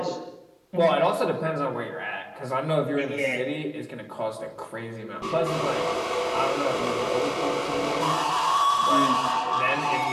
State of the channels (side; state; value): both; identical; correlation 1.00